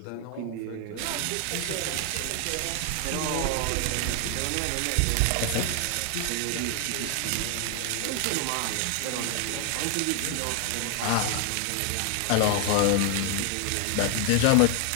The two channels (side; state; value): both; different; correlation 0.00